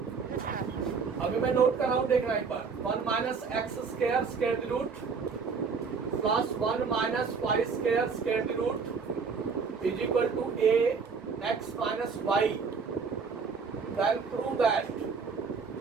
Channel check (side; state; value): left; quieter; 5.3 dB